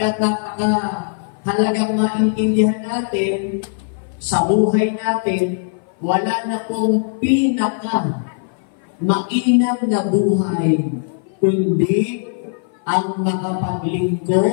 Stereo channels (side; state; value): right; silent; 57 dB below the other